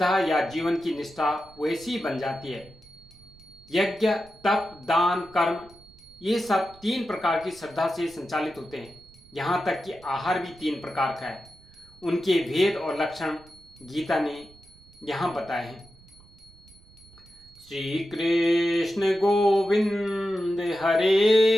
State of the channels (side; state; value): right; noise; rumble, 25 dB below the sound